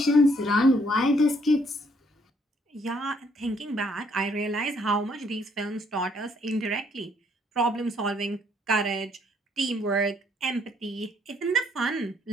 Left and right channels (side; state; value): both; normal; correlation 0.67